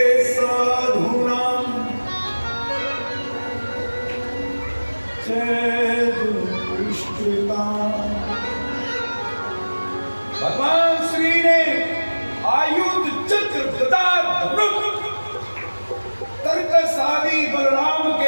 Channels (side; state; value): both; inverted; correlation -1.00